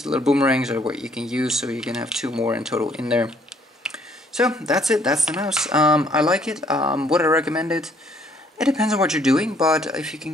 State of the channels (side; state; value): both; normal; correlation 0.64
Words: little boomerangs are what you can use, so you can have two more in total in there. So that's it, that's the mouse. I like it. Would I recommend it? It depends on what you're doing, but if you can